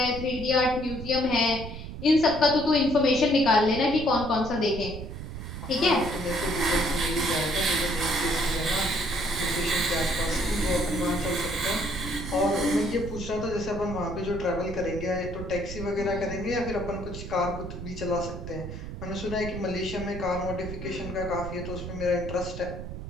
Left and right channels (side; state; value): right; noise; rumble, 9 dB below the sound